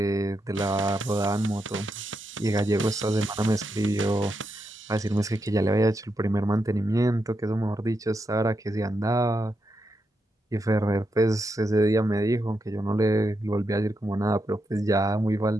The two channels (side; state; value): both; normal; correlation 0.84